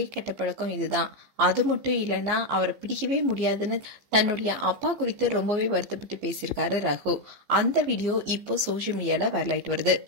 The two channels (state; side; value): late; left; 15 ms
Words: கெட்ட பழக்கம் இதுதான், அது மட்டும் இல்லைன்னா அவரை பிடிக்கவே முடியாதுன்னு தன்னுடைய அப்பா குறித்து ரொம்பவே வருத்தப்பட்டு பேசியிருக்காரு ரகு. அந்த வீடியோ இப்போ சோசியல் மீடியால வைரல் ஆயிட்டு வருது.